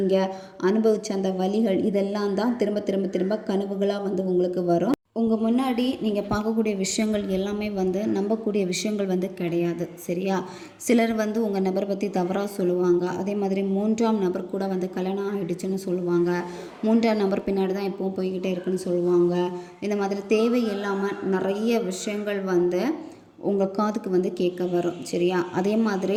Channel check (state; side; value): identical; both; correlation 1.00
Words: அனுபவித்த அந்த வலிகள் இதெல்லாம் தான் திரும்ப கனவுகளாக வந்து உங்களுக்கு வரும். உங்கள் முன்னாடி நீங்கள் பார்க்கக்கூடிய விஷயங்கள் எல்லாமே வந்து நம்பக்கூடிய விஷயங்கள் வந்து கிடையாது. சரியா? சிலர் வந்து உங்கள் நபரை பற்றி தவறாக சொல்லுவாங்க. அதே மாதிரி மூன்றாம் நபர் கூட வந்து கல்யாணம் ஆகிடுச்சுன்னு சொல்லுவாங்க. மூன்றாம் நபர் பின்னாடி தான் எப்பவும் போய்கிட்டே இருக்குன்னு சொல்லுவாங்க. இந்த மாதிரி தேவையில்லாமல் நிறைய விஷயங்கள் வந்து உங்கள் காதுக்கு வந்து கேட்க வரும். சரியா? அதே